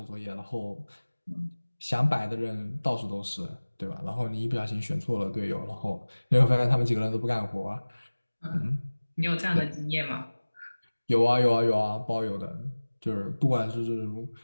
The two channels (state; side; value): inverted; both; correlation -1.00